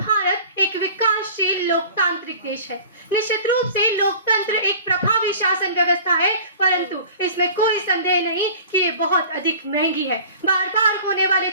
एक विकासशील लोकतांत्रिक देश है। निश्चित रूप से लोकतंत्र एक प्रभावी शासन व्यवस्था है, परंतु इसमें कोई संदेह नहीं कि ये बहुत अधिक महंगी है। बार बार होने वाले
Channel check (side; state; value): both; inverted; correlation -0.43